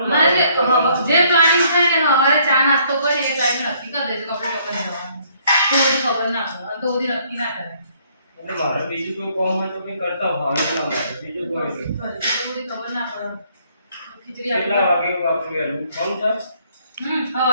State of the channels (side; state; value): both; inverted; correlation -0.65